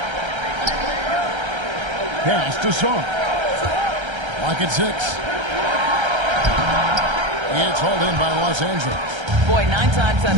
Pass to Sarr. Lock at 6. It's hauled in by Los Angeles. Boy, 9 times out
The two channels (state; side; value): late; left; 1.3 ms